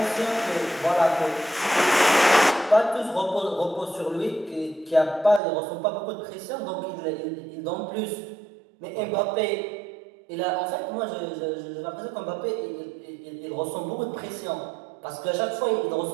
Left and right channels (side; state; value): left; drops out; at 5.4 s